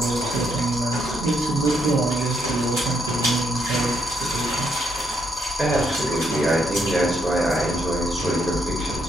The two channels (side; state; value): both; normal; correlation 0.75